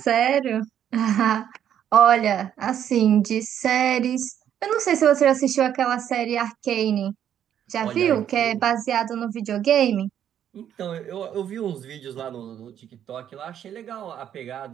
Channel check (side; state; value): left; quieter; 9.8 dB